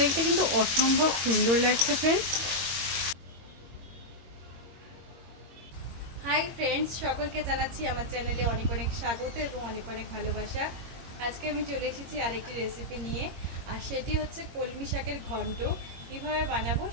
দেখতে কিন্তু অসম্ভব সুন্দর লাগছে ফ্রেন্ডস। হাই ফ্রেন্ডস, সকলকে জানাচ্ছি আমার চ্যানেলে অনেক অনেক স্বাগত এবং অনেক অনেক ভালোবাসা। আজকে আমি চলে এসেছি আরেকটি রেসিপি নিয়ে, আর সেটি হচ্ছে কলমি শাকের ঘন্ট। কীভাবে বানাবো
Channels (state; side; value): late; left; 22 ms